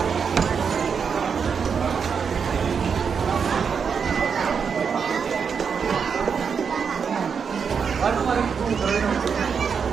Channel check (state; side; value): quieter; left; 6.3 dB